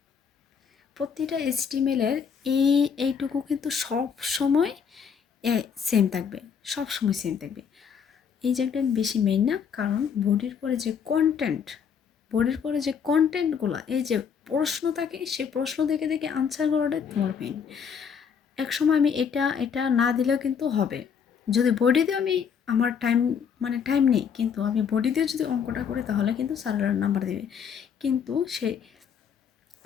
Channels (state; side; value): quieter; right; 7.1 dB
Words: প্রতিটা এইচটিএমএলের এইটুকু কিন্তু সব সময় সেম থাকবে, সব সময় সেম থাকবে। এই জায়গাটা বেশি মেইন না, কারণ বডির পরে যে কন্টেন্ট, বডির পরে যে কন্টেন্টগুলো, এই যে প্রশ্ন থাকে, সেই প্রশ্ন দেখে দেখে আনসার করাটাই তোমার মেইন। এক সময় আমি এটা এটা না দিলেও কিন্তু হবে। যদি বডি দিয়ে আমি, আমার টাইম, মানে টাইম নেই, কিন্তু আমি বডি দিয়ে যদি অঙ্কটা করি তাহলে কিন্তু স্যারেরা নাম্বার দেবে। কিন্তু সেই